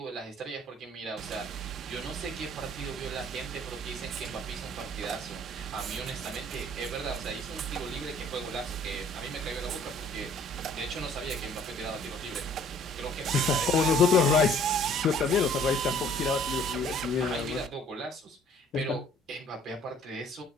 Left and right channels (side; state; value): both; normal; correlation 0.56